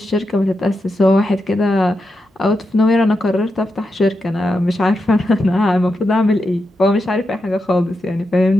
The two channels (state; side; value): normal; both; correlation 0.87